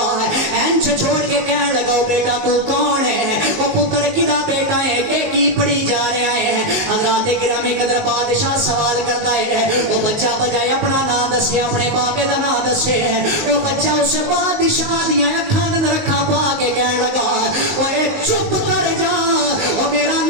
ہے اینچ چھوڑ کے کہنے لگا بیٹا تو کون ہے وہ پکڑ کدا بیٹا ہے کہ کی پڑھی جا رہا ہے حضرات گرامی قدر بادشاہ سوال کرتا ہے وہ بچہ بجائے اپنا نام دسے اپنے بابے دا نام دسے وہ بچہ اس بادشاہ دیاں اکھاں دے رکھا پا کے کہنے لگا اوے چپ کر جا وہ میرا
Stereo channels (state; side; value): late; left; 19 ms